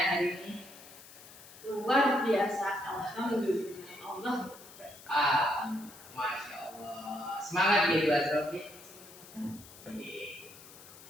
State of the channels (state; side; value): noise; left; hiss, 19 dB below the sound